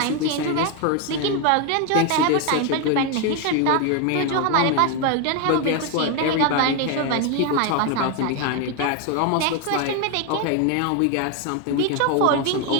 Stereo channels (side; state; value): both; different; correlation 0.01